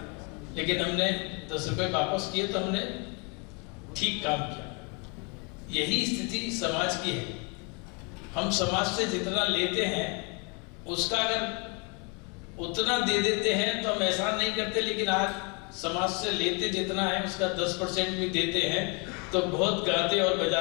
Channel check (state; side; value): quieter; right; 33.4 dB